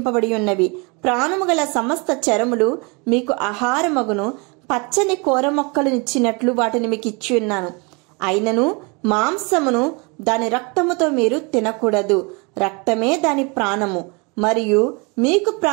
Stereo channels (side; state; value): left; quieter; 30.2 dB